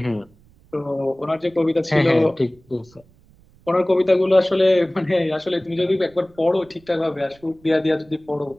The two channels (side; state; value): right; noise; rumble, 29 dB below the sound